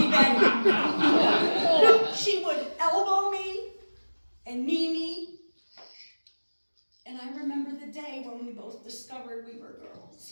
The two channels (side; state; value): both; inverted; correlation -1.00